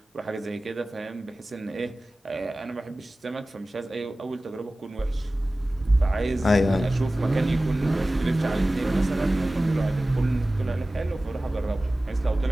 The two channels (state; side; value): normal; both; correlation 0.97